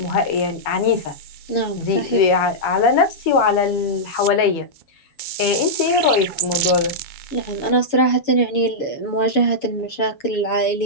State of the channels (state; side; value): late; right; 7.1 ms